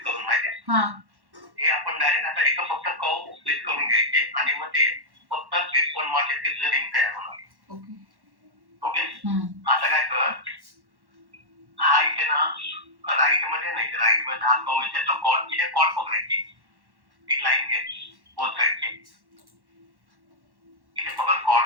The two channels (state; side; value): late; left; 1.1 ms